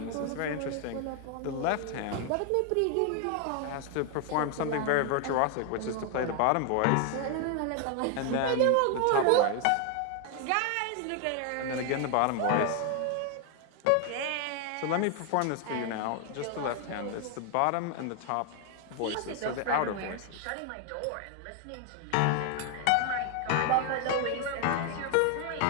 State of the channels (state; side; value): different; both; correlation 0.00